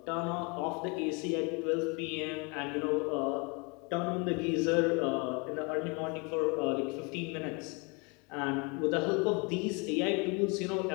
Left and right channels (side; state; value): right; quieter; 30.7 dB